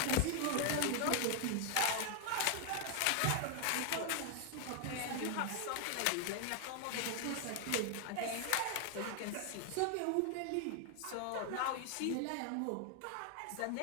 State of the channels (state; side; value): different; both; correlation 0.00